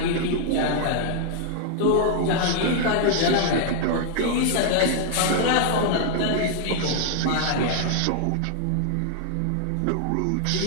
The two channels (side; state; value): both; different; correlation -0.01